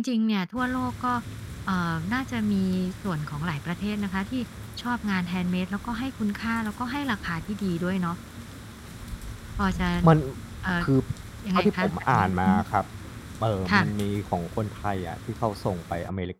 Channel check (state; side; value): identical; both; correlation 1.00